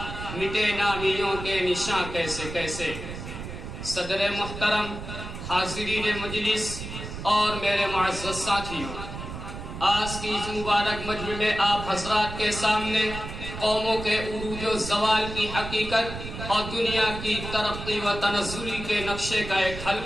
مٹے نامیوں کے نشاں کیسے کیسے. صدر محترم، حاضرین مجلس اور میرے معزز ساتھیوں، آج کی اس مبارک مجمع میں آپ حضرات کے سامنے قوموں کے عروج و زوال کی حقیقت اور دنیا کی ترقی و تنزلی کے نقشے کا ایک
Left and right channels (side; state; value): right; noise; rumble, 9 dB below the sound